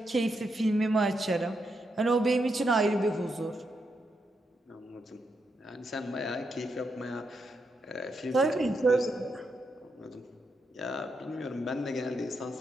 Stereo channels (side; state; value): both; normal; correlation 0.82